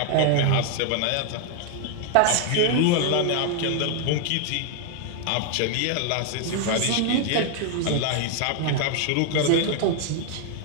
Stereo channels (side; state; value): both; different; correlation 0.00